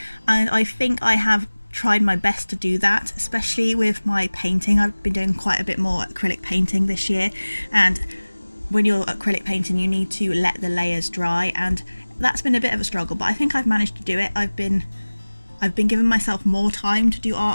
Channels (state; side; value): inverted; both; correlation -1.00